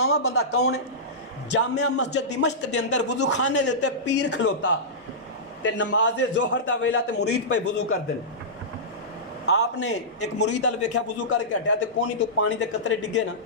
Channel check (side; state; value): both; normal; correlation -0.16